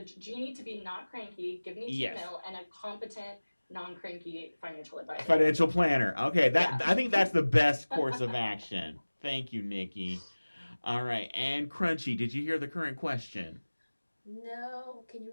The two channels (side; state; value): both; inverted; correlation -1.00